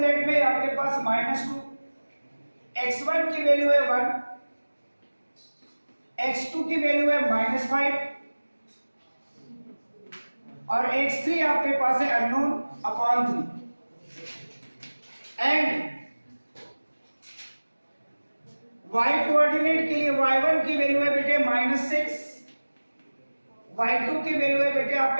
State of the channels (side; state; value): both; inverted; correlation -1.00